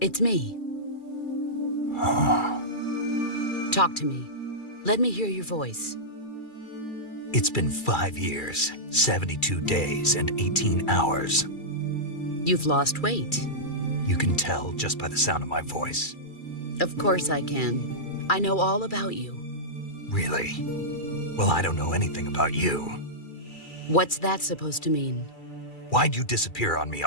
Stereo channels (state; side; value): late; right; 2.3 ms